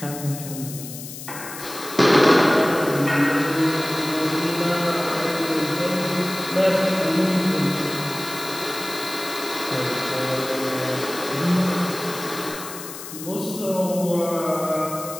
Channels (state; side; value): noise; left; hiss, 11 dB below the sound